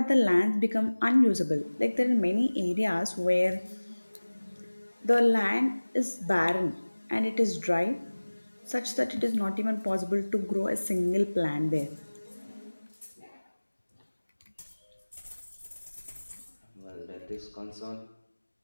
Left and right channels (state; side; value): inverted; both; correlation -1.00